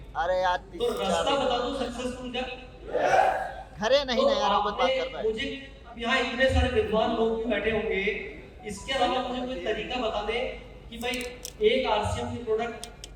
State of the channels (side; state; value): both; identical; correlation 1.00